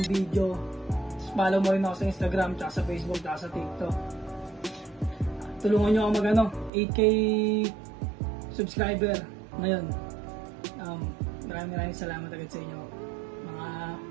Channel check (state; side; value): drops out; left; at 6.7 s